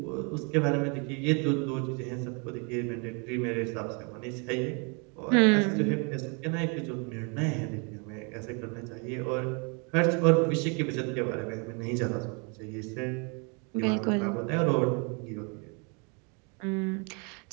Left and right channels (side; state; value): left; quieter; 34.6 dB